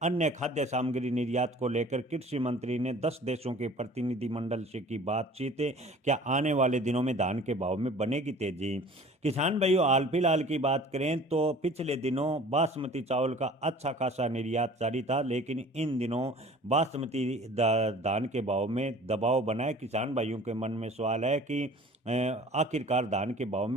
अन्य खाद्य सामग्री निर्यात को लेकर कृषि मंत्री ने 10 देशों के प्रतिनिधिमंडल से की बातचीत। क्या आने वाले दिनों में धान के भाव में बनेगी तेजी? किसान भाइयों, हाल फिलहाल की बात करें तो पिछले दिनों बासमती चावल का अच्छा खासा निर्यात जारी था, लेकिन इन दिनों बासमती धान के भाव में दबाव बना है। किसान भाइयों के मन में सवाल है कि आखिरकार धान के भाव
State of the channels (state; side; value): normal; both; correlation 0.47